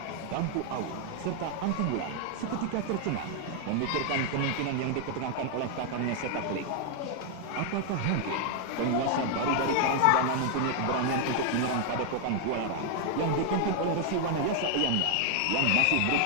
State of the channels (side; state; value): both; different; correlation 0.00